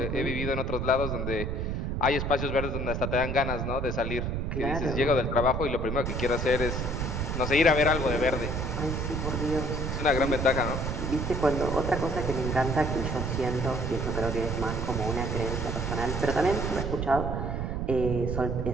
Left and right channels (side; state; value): right; noise; rumble, 2 dB below the sound